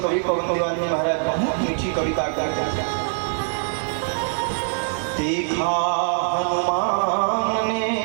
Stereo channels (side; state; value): left; silent; digital silence